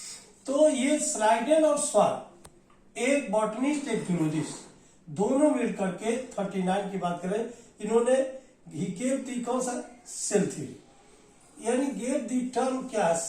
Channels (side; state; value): both; identical; correlation 1.00